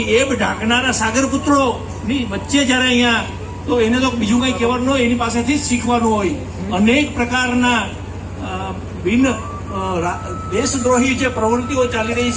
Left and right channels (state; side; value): identical; both; correlation 1.00